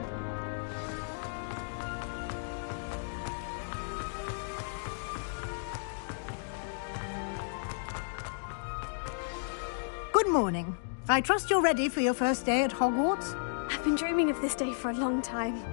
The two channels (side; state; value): right; silent; digital silence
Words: Good morning. I trust you're ready for your first day at Hogwarts? I've been dreaming of this day for a long time.